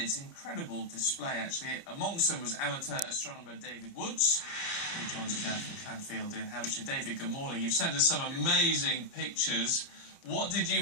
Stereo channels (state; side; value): late; right; 30 ms